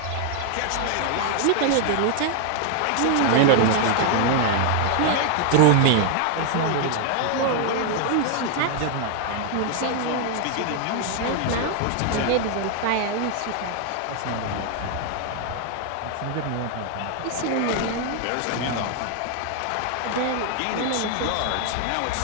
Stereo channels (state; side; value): different; both; correlation 0.00